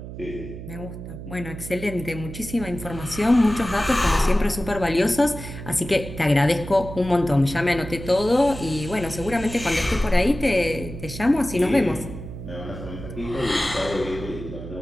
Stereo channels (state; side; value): noise; right; hum, 11 dB below the sound